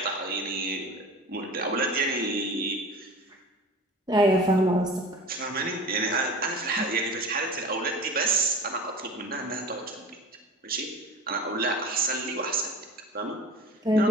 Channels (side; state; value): both; normal; correlation 0.35